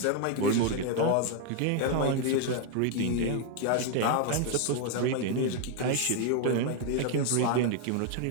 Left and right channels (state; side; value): different; both; correlation 0.00